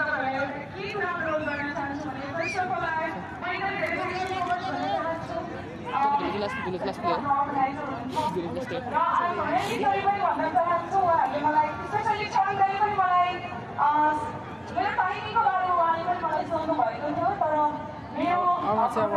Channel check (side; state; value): both; identical; correlation 1.00